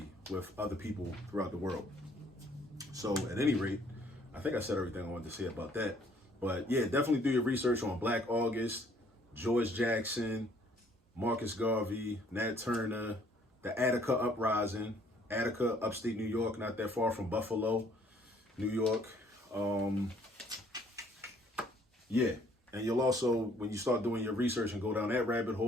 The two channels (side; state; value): both; normal; correlation 0.62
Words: with other people throughout the world. So at any rate, I think I said everything I wanted to say about that. But yeah, definitely do your research on Black August, George Jackson, Marcus Garvey, Nat Turner, the Attica Uprising, Attica, upstate New York, not that far from Buffalo, New York. Yeah, and you'll also, when you start doing your research and go down that rabbit